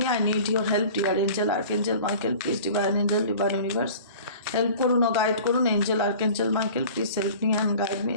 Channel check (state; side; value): inverted; both; correlation -0.43